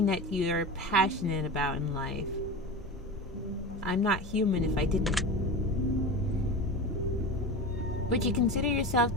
that you're passionate about in life? I'm not human if I didn't. Would you consider yourself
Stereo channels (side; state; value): both; normal; correlation 0.27